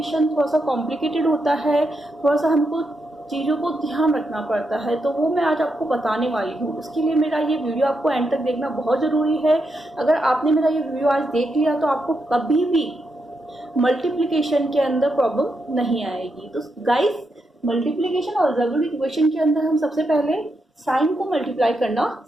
थोड़ा सा कॉम्प्लिकेटेड होता है, थोड़ा सा हमको चीज़ों को ध्यान रखना पड़ता है, तो वो मैं आज आपको बताने वाली हूँ। उसके लिए मेरा ये वीडियो आपको एंड तक देखना बहुत ज़रूरी है। अगर आपने मेरा ये वीडियो आज देख लिया तो आपको कभी भी मल्टीप्लिकेशन के अंदर प्रॉब्लम नहीं आएगी। तो गाइस, मल्टीप्लिकेशन और अलजेब्रिक इक्वेशन के अंदर हम सबसे पहले साइन को मल्टीप्लाई करना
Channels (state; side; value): normal; both; correlation 0.83